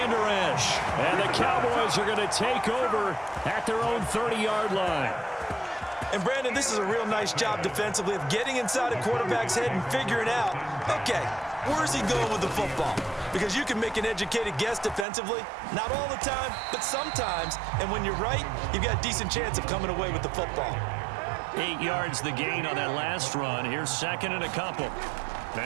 Esch. And the Cowboys are going to take over at their own 30-yard line. And, Brandon, this is a real nice job defensively of getting inside a quarterback's head and figuring out, okay, where's he going with the football? Because you can make an educated guess defensively, not all the time, but sometimes. And when you're right, you've got a decent chance of coming away with the football. 8 yards the gain on that last run. Here's 2nd and a couple.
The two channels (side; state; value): left; drops out; at 15.1 s